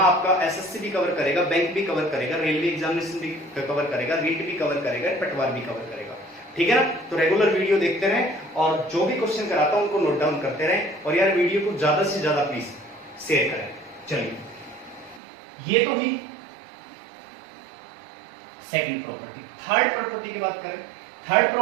आपका एसएससी भी कवर करेगा, बैंक भी कवर करेगा, रेलवे एग्जामिनेशन भी कवर करेगा, रीट भी कवर करेगा, पटवार भी कवर करेगा, ठीक है ना। तो रेगुलर वीडियो देखते रहें और जो भी क्वेश्चन कराता हूं उनको नोट डाउन करते रहें, और यार वीडियो को ज्यादा से ज्यादा प्लीज शेयर करें। चलिए, ये तो ही सेकंड प्रॉपर्टी। थर्ड प्रॉपर्टी की बात करें, थर्ड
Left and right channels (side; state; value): left; drops out; at 15.2 s